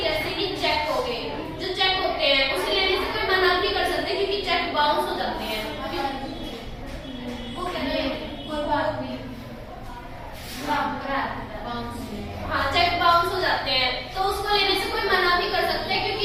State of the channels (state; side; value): identical; both; correlation 1.00